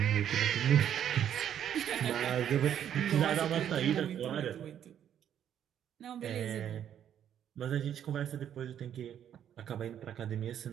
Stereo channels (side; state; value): left; quieter; 9.8 dB